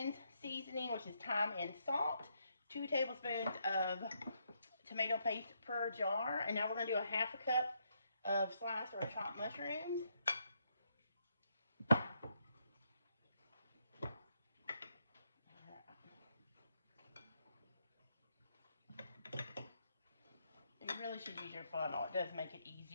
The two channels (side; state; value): both; inverted; correlation -0.77